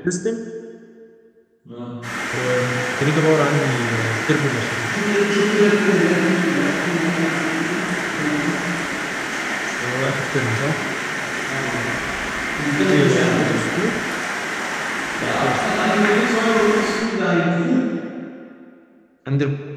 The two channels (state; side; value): identical; both; correlation 1.00